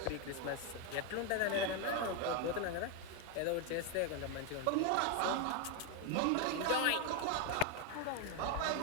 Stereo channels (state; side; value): different; both; correlation 0.01